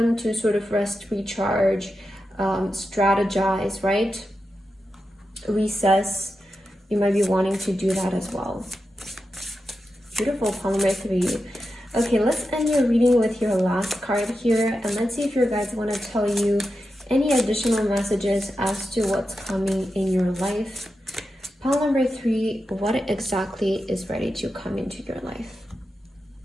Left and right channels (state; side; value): normal; both; correlation 0.89